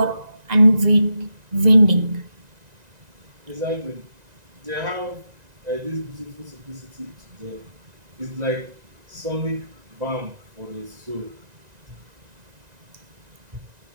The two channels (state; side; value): late; left; 1.9 ms